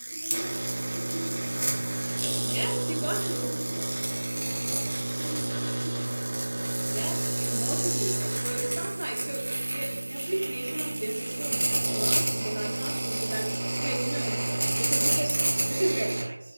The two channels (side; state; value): both; inverted; correlation -1.00